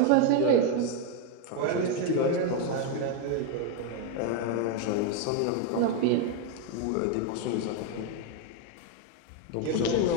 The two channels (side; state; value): both; different; correlation 0.01